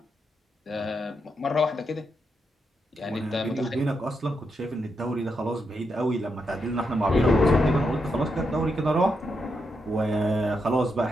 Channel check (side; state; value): both; normal; correlation 0.82